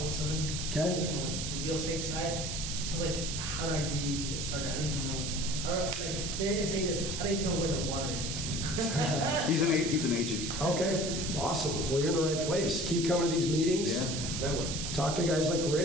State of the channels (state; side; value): noise; right; hiss, 4 dB below the sound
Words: Okay. From the real estate side. So how do I get started? I don't even know. It's say this. I don't even know where the water is. He's an agent. Okay. Awesome. Well, you're in the right place. Keep coming to these meetings. That way. Talk to guys like